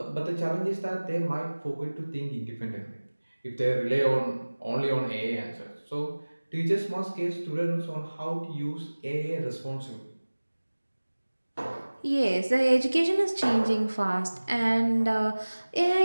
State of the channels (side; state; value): both; inverted; correlation -1.00